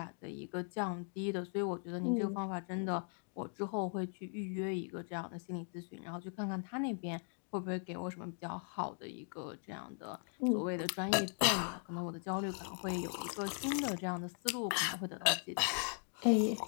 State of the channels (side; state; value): right; silent; 52 dB below the other